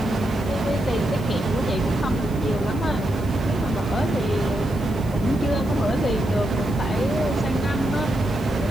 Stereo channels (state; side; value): noise; left; hiss, 22 dB below the sound